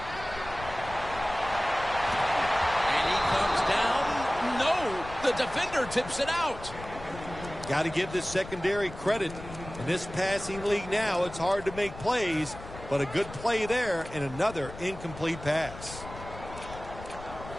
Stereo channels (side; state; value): left; noise; rumble, 13 dB below the sound